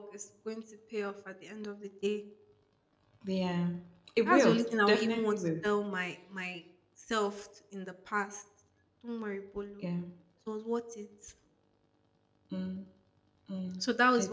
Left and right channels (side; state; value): both; identical; correlation 1.00